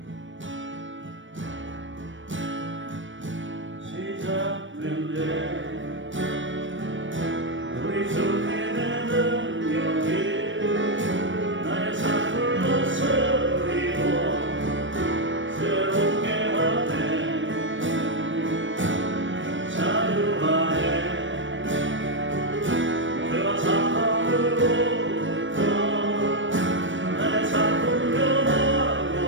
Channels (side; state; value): left; late; 0.56 ms